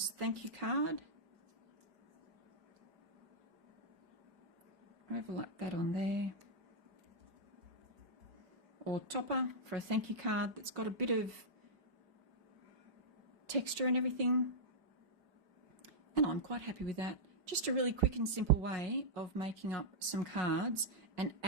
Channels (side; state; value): left; late; 5.0 ms